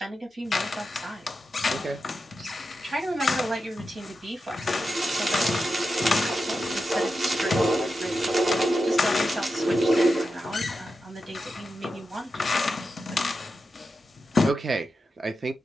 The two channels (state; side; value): normal; both; correlation 0.89